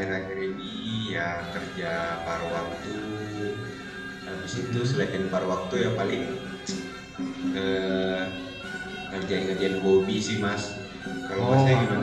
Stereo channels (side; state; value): both; identical; correlation 1.00